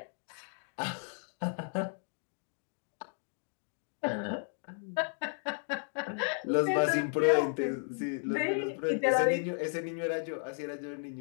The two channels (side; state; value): right; silent; 55 dB below the other